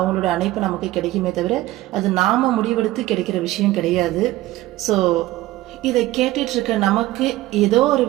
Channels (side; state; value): left; quieter; 16.8 dB